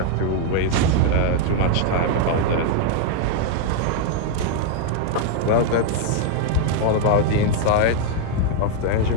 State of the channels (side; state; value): both; different; correlation 0.00